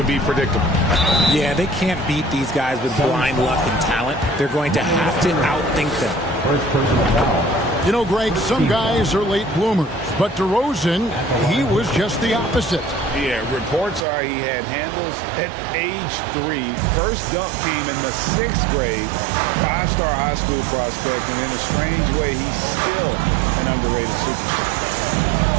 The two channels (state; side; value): drops out; left; at 14.1 s